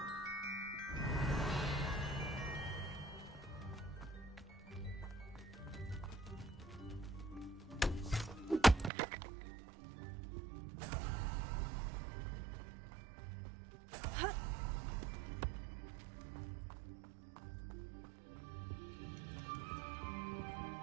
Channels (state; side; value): drops out; left; at 8.9 s